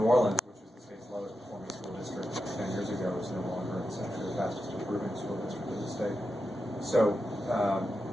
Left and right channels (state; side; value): normal; both; correlation 0.89